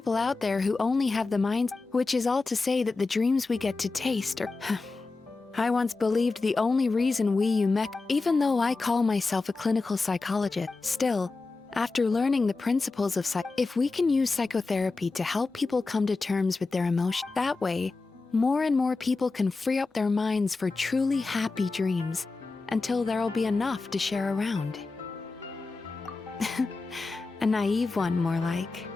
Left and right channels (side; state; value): right; quieter; 3.8 dB